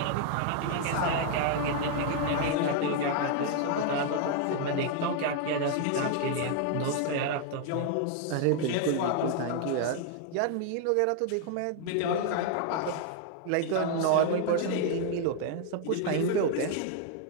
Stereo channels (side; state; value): both; different; correlation 0.00